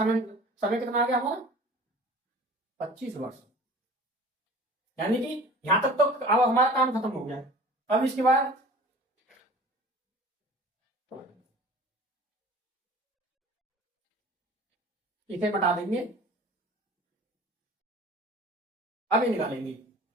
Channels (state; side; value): normal; both; correlation 0.43